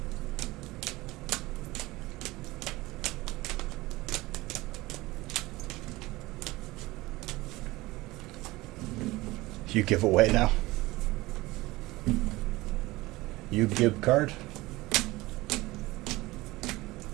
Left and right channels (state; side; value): quieter; left; 20.0 dB